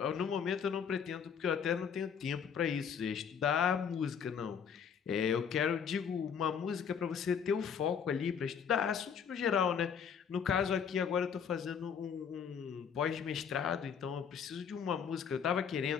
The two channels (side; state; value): right; quieter; 7.2 dB